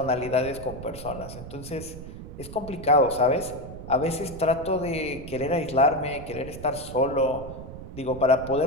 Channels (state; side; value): noise; right; rumble, 12 dB below the sound